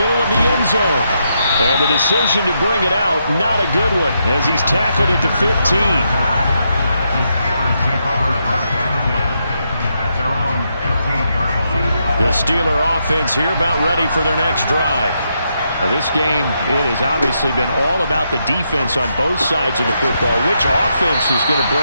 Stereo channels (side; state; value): both; inverted; correlation -0.80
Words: of the end zone. And the decision to bring it out, not a good one, as he's tackled at the 15. The Steeler offense here about ready for their next drive. Now this game, it has obviously been all about the defense on both sides of the football. Which offense is going to